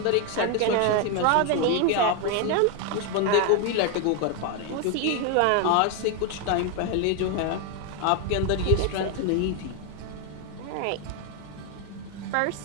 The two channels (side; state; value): both; different; correlation 0.01